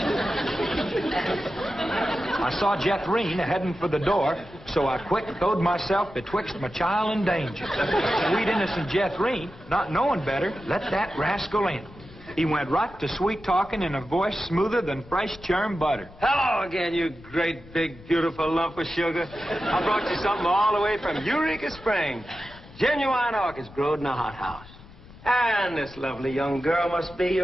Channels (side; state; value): left; noise; rumble, 20 dB below the sound